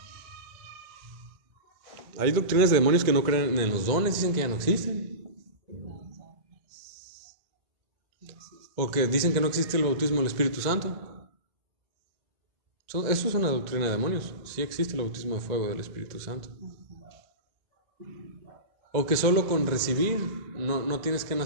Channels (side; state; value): left; late; 2.0 ms